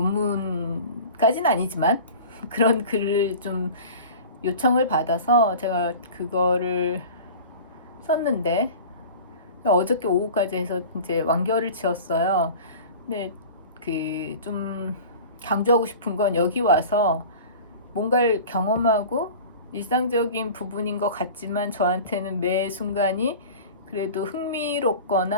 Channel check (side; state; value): both; inverted; correlation -0.39